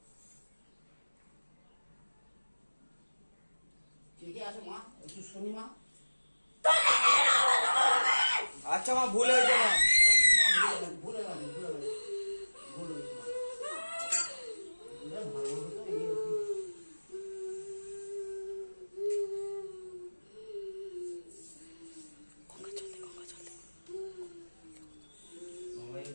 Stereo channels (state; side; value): inverted; both; correlation -1.00